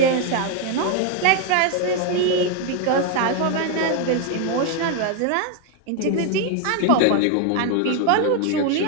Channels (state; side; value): different; both; correlation 0.01